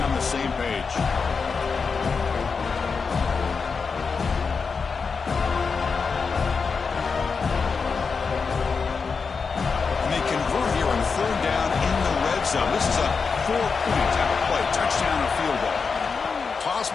the same page. And they convert here on 3rd down in the red zone. This is a 4-point type of play. Touchdown or field goal. Toss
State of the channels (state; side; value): quieter; right; 5.2 dB